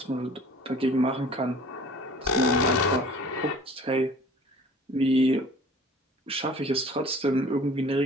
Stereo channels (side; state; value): both; normal; correlation 0.47